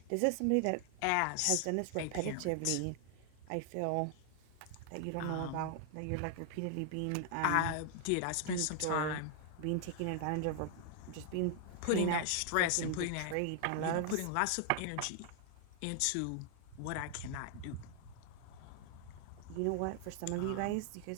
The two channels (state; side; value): different; both; correlation 0.00